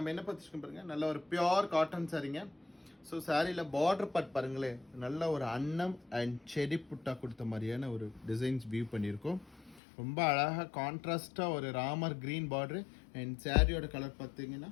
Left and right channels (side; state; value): right; drops out; at 9.8 s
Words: என்ன பார்த்துருக்கோம் பாருங்க, நல்ல ஒரு பியோர் காட்டன் சாரீங்க. ஸோ சாரியில் பார்டர் பார்ட் பாருங்களேன், நல்ல ஒரு அன்னம் அண்ட் செடி புட்டா கொடுத்த மாதிரியான ஒரு டிசைன்ஸ் வியூ பண்ணியிருக்கோம். ரொம்ப அழகாக கான்ட்ராஸ்டாக ஒரு ராமர் க்ரீன் பார்டரு அண்ட் சாரியோட கலர் பார்த்தீங்கன்னா